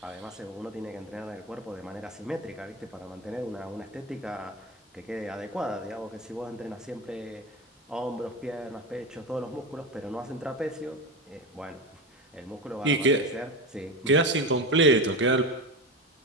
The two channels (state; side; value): normal; both; correlation 0.22